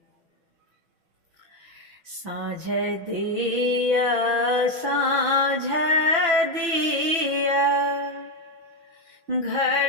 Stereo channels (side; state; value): left; late; 6.1 ms